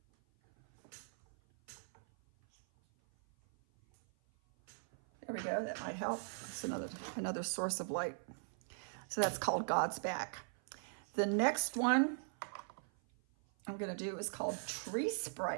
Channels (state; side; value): silent; left; 51 dB below the other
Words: There we go, that might help. It's another source of light. So that's called God's Back. The next one I'm gonna do is called Tree